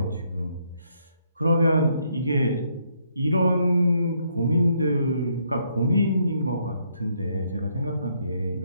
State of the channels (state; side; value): inverted; both; correlation -0.72